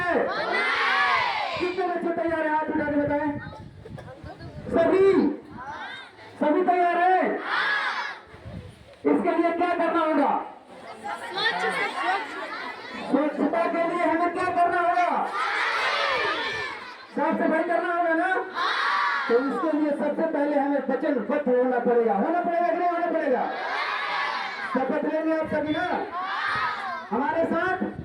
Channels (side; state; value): both; identical; correlation 1.00